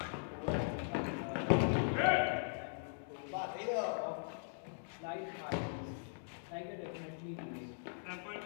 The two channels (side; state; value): right; silent; digital silence